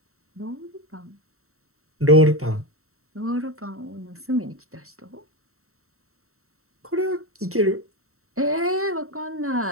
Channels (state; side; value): late; left; 0.63 ms